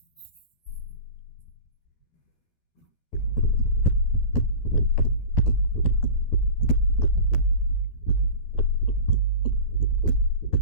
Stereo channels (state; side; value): late; right; 12 ms